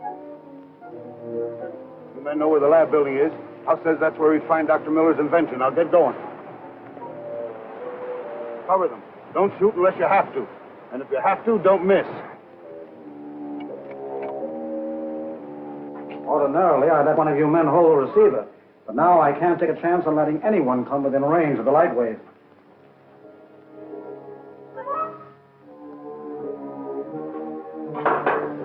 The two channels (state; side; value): identical; both; correlation 1.00